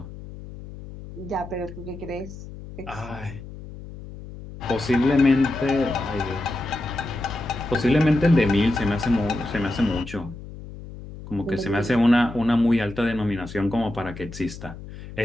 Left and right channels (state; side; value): noise; left; hum, 13 dB below the sound